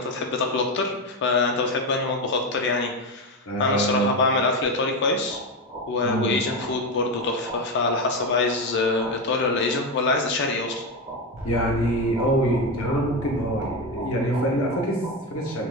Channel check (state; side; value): normal; both; correlation 0.14